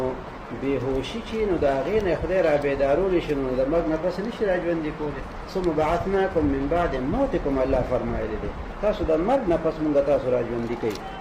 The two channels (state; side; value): identical; both; correlation 1.00